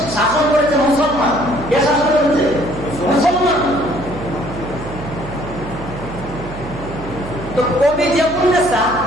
শাসন করেছে মুসলমান। কে শাসন করেছে? মুসলমান। তো কবি জেবুন্নেসা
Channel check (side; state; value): right; noise; hum, 12 dB below the sound